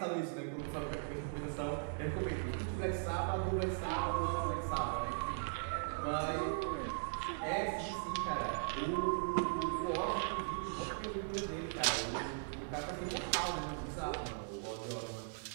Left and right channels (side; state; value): left; silent; digital silence